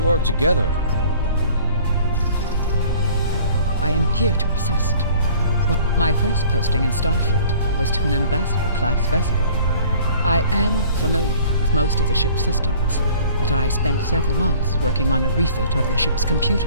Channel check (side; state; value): both; inverted; correlation -0.50